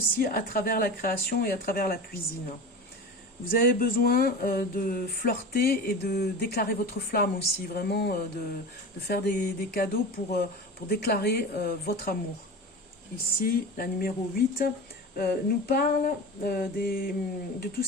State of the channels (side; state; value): both; normal; correlation 0.30